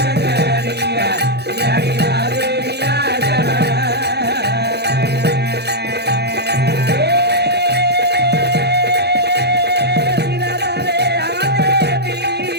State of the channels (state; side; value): late; left; 0.48 ms